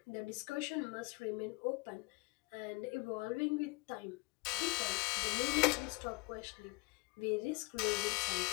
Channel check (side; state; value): right; quieter; 27.0 dB